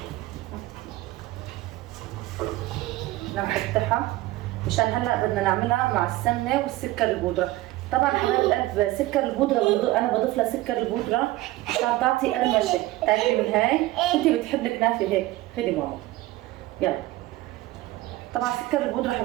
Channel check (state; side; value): quieter; left; 17.7 dB